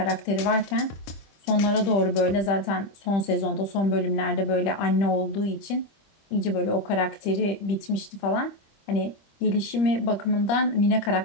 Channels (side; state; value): right; late; 25 ms